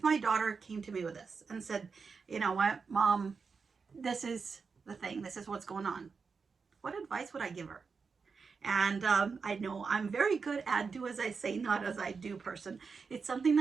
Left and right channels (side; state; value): left; quieter; 5.2 dB